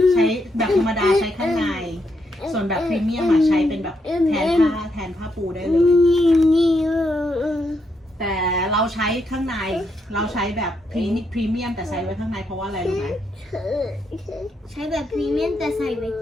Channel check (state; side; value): normal; both; correlation 0.79